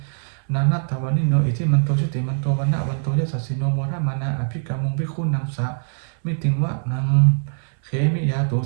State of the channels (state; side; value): silent; left; 64 dB below the other